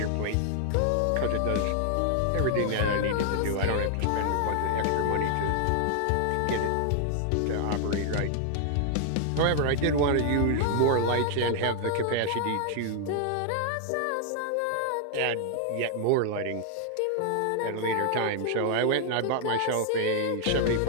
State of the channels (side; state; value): both; different; correlation 0.00